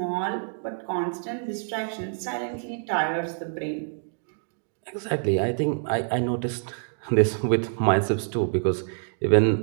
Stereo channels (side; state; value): left; silent; digital silence